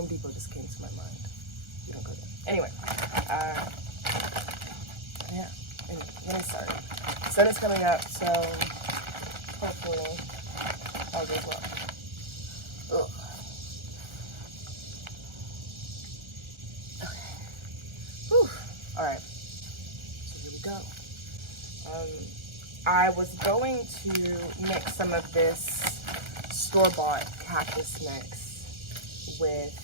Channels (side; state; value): left; late; 1.3 ms